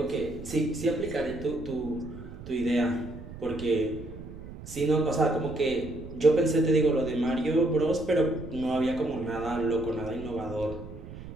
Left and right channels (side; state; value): right; noise; rumble, 13 dB below the sound